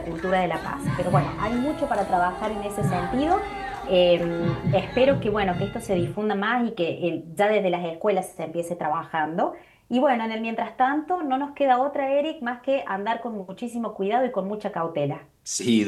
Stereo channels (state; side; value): identical; both; correlation 1.00